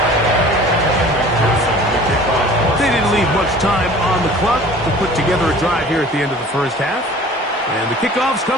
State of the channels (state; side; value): normal; both; correlation 0.46